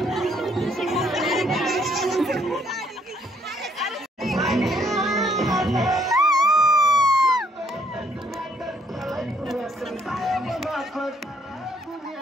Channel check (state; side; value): normal; both; correlation 0.68